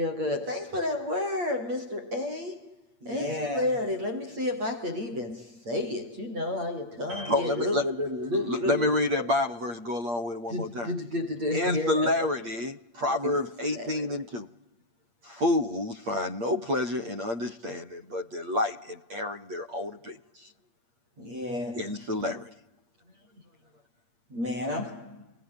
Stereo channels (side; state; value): left; late; 8.6 ms